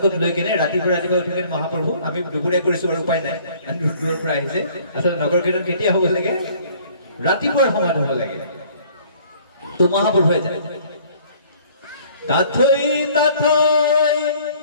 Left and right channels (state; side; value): inverted; both; correlation -0.56